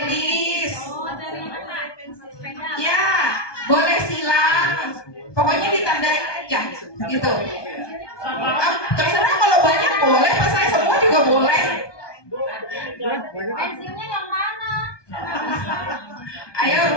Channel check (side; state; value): right; late; 1.2 ms